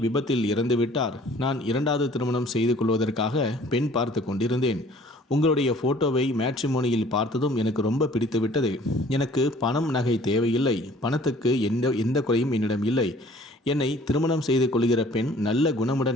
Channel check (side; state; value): both; normal; correlation 0.53